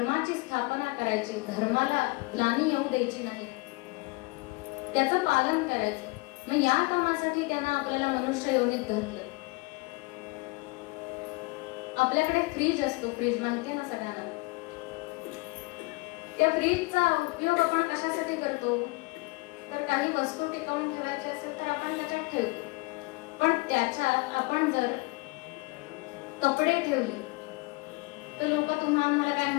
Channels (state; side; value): quieter; right; 25.7 dB